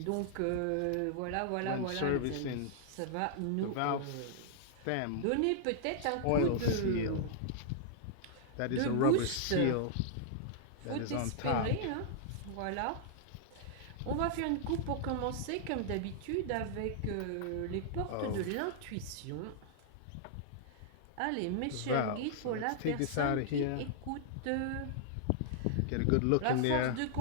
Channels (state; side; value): different; both; correlation -0.01